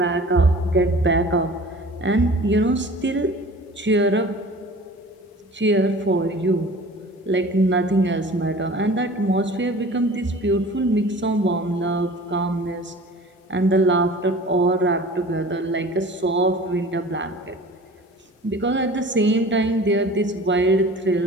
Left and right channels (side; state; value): both; normal; correlation 0.43